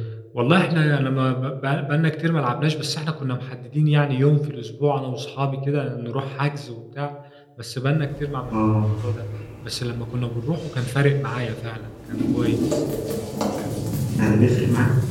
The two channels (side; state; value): both; identical; correlation 1.00